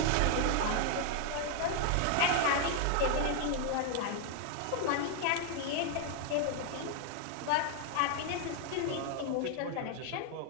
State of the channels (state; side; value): different; both; correlation 0.00